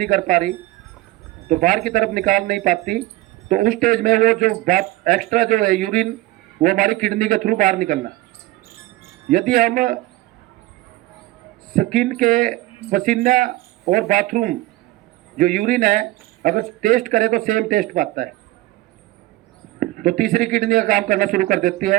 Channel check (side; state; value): left; quieter; 18.0 dB